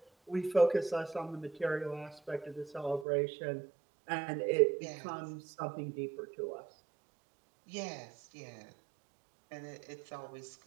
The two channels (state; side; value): drops out; left; at 3.1 s